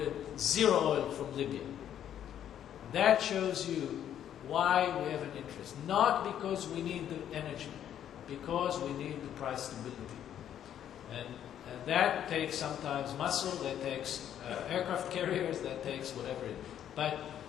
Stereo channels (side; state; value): right; quieter; 10.2 dB